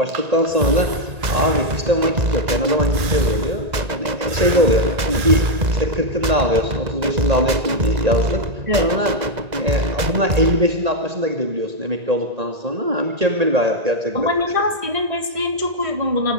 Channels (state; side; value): late; left; 1.9 ms